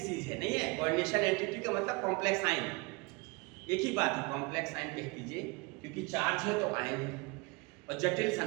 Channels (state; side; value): quieter; left; 26.9 dB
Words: है, नहीं है। कोऑर्डिनेशन एंटिटी का मतलब कॉम्प्लेक्स आयन, एक ही बात है, कॉम्प्लेक्स आयन कह दीजिए, क्योंकि चार्ज है तो आयन है और जटिल